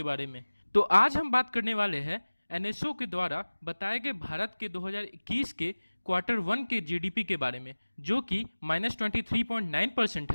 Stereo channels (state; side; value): inverted; both; correlation -1.00